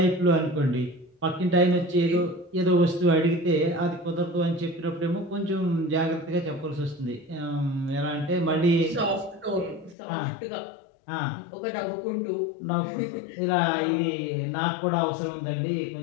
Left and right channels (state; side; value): drops out; right; at 10.0 s